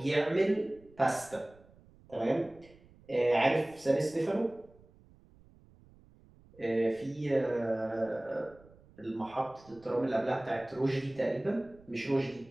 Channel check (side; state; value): right; noise; rumble, 26 dB below the sound